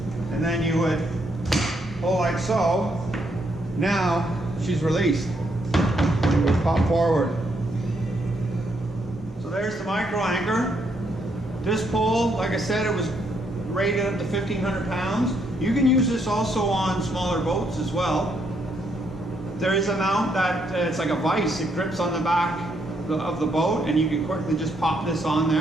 and then you would pull like so. Now she's released. You would pop forward. So there's the micro anchor. This pole, like I said, it was rated up to 1,500 pounds. You can use this also on smaller boats as well. There is a mount that it's like a vise. It grips on the back of the boat and you can quickly just pop this on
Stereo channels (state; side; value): normal; both; correlation 0.75